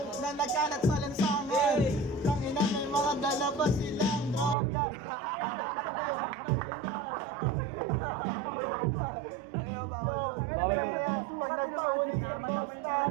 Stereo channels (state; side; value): drops out; left; at 4.5 s